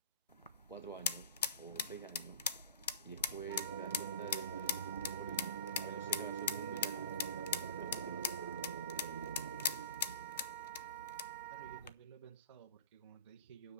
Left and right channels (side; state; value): both; inverted; correlation -0.39